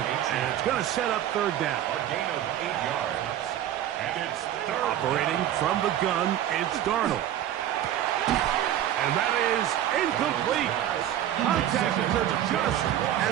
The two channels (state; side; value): quieter; left; 11.6 dB